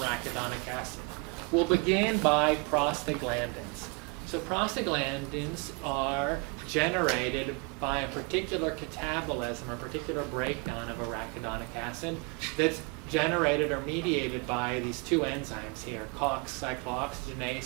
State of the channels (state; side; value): quieter; left; 29.6 dB